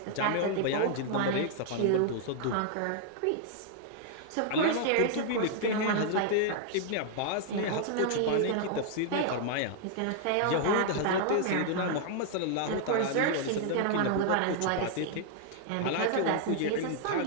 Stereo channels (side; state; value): both; different; correlation -0.01